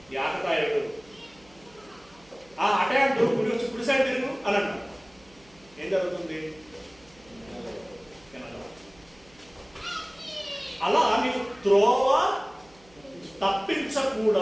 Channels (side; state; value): right; noise; hum, 27 dB below the sound